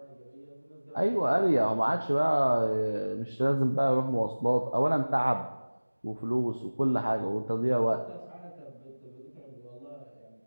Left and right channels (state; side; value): inverted; both; correlation -1.00